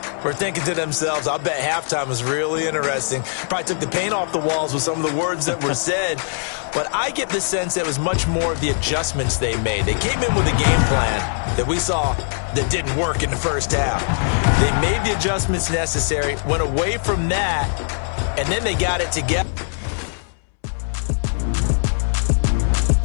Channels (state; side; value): silent; right; digital silence